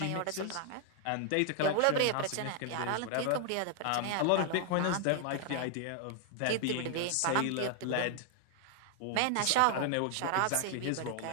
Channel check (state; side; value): different; both; correlation 0.00